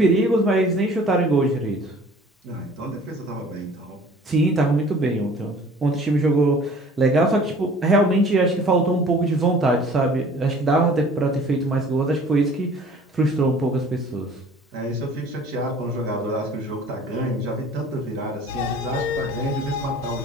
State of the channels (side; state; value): both; normal; correlation 0.49